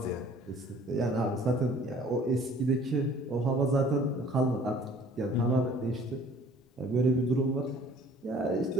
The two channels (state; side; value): normal; both; correlation 0.53